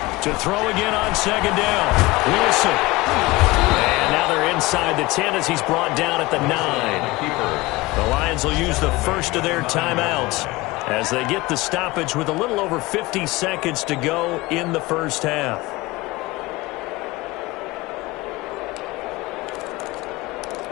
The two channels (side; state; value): right; quieter; 20.9 dB